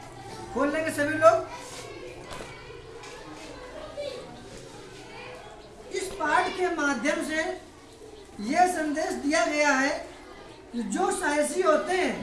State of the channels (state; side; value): identical; both; correlation 1.00